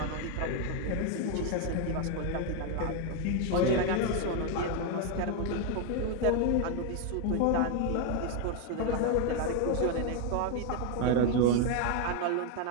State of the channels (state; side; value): different; both; correlation 0.01